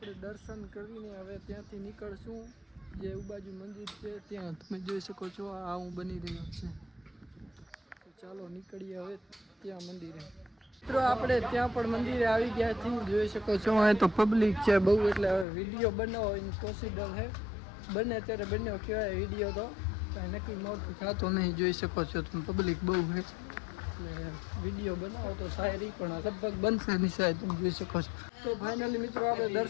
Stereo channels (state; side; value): drops out; right; at 15.5 s